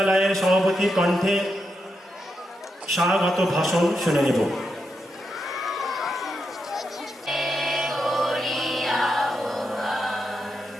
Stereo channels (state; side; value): normal; both; correlation 0.85